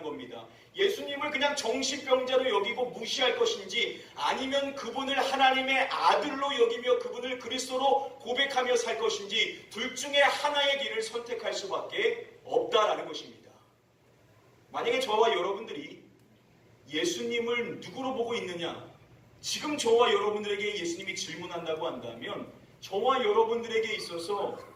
겁니다. 예수님을 그냥 정신병자로 여기고 무시할 것인지 아니면 그분을 하나님의 아들로 여기며 그분을 그리스도로 고백하며 살 것인지 둘 중에 하나의 길을 선택할 수밖에 없다라는 것입니다. 만약에 저와 여러분들이 예수님을 누구로 보고 있느냐? 지금 저와 여러분들에게 예수님이 질문한다고 한다면 저와 여러분들에게 있어서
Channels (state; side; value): identical; both; correlation 1.00